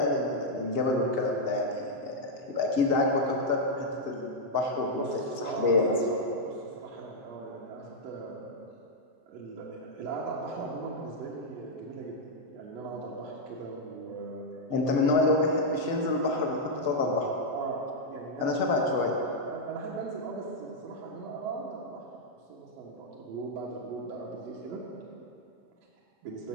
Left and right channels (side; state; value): left; late; 6.9 ms